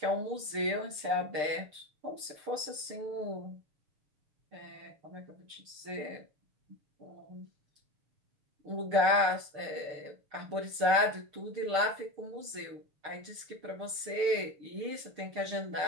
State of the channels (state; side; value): late; left; 6.7 ms